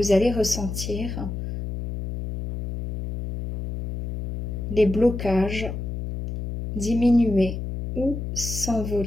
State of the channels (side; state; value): left; noise; hum, 5 dB below the sound